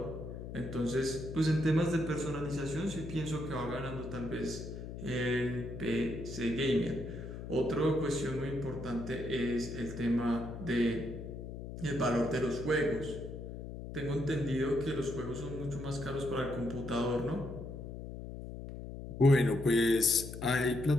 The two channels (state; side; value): noise; left; hum, 9 dB below the sound